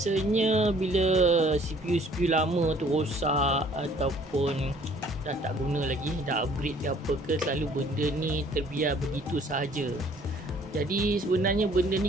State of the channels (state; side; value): normal; both; correlation 0.57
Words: bila CPU lama tu rosak ataupun dah tak guna lagi, dah upgrade ke apa ke, selalu benda ni terbiar begitu sahaja. Jadi sebenarnya benda